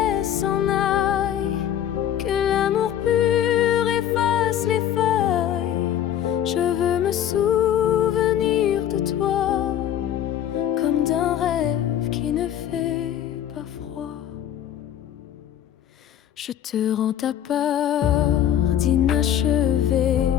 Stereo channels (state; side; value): quieter; right; 10.5 dB